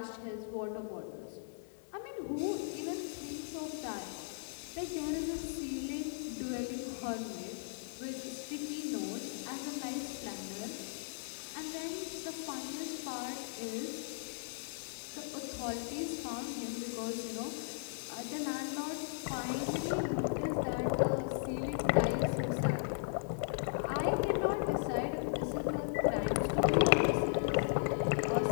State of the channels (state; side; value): silent; right; 53 dB below the other